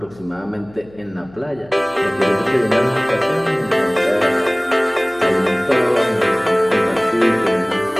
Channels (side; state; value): left; noise; hum, 24 dB below the sound